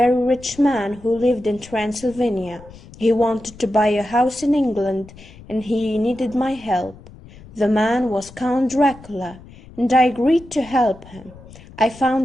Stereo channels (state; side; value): noise; left; rumble, 20 dB below the sound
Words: rich man who lived in Transylvania. He wanted to buy a house in England, and he needed my help. The man was Count Dracula, and I agreed to help him. I